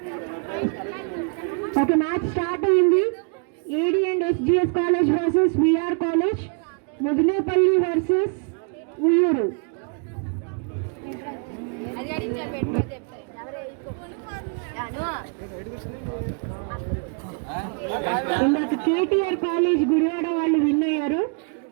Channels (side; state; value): left; quieter; 39.3 dB